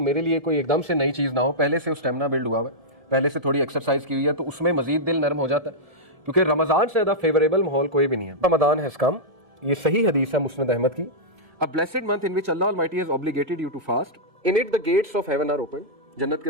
لیے کوئی ایک دم سے نئی چیز نہ ہو، پہلے سے اسٹیمنا بلڈ ہوا ہوا ہے. پہلے سے تھوڑی ایکسرسائز کی ہوئی ہے تو اس میں مزید دل نرم ہو جاتا ہے، کیونکہ رمضان سے زیادہ فیوریبل ماحول کوئی بھی نہیں ہے. رمضان has come، یہ صحیح حدیث ہے مسند احمد کی. A blessed month in which Allah Almighty has obligated you to fast. In it the gates of heaven are open. جنت کے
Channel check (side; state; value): left; late; 1.7 ms